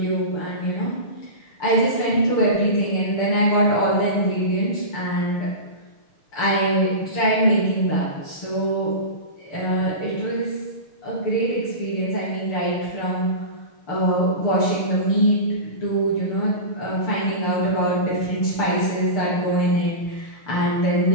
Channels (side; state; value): right; late; 6.7 ms